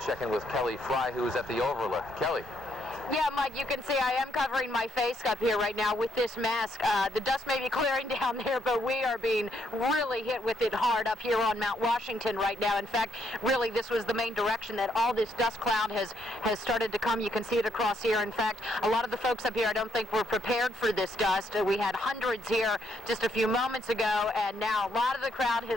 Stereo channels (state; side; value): normal; both; correlation 0.74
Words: check in with Kelly Fry, who is at the overlook. Kelly. Yeah, Mike, you can see I am covering my face up here right now with this mask. The dust may be clearing down there, but we are being really hit with it hard up here on Mount Washington right now. In fact, really, this was the main direction that all this dust cloud has started to come. You can see it across here. In fact, a lot of the folks up here I don't think were prepared for this dust. We had hundreds here just a few moments ago, and now a lot of the crowd